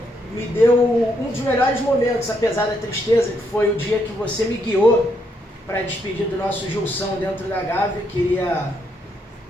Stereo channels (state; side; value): normal; both; correlation 0.76